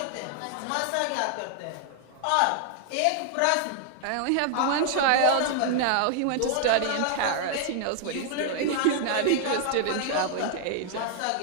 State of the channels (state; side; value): different; both; correlation 0.00